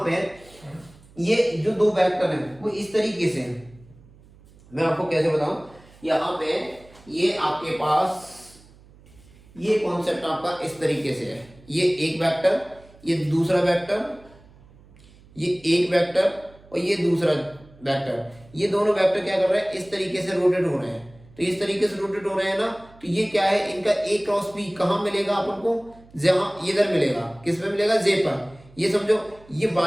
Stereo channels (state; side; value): noise; right; hum, 25 dB below the sound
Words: पे ये जो दो वेक्टर हैं वो इस तरीके से हैं, मैं आपको कैसे बताऊं। यहाँ पे ये आपके पास ये कॉन्सेप्ट आपका इस तरीके से है, ये एक वेक्टर, ये दूसरा वेक्टर, ये एक वेक्टर और ये दूसरा वेक्टर, ये दोनों वेक्टर क्या कर रहे हैं, इस तरीके से रोटेट हो रहे हैं। तो इस तरीके से रोटेट हो रहे हैं ना, तो ये क्या है, इनका a क्रॉस b कहाँ मिलेगा अपन को, जहां इधर मिलेगा, किस पे मिलेगा, j पर। ये समझो ये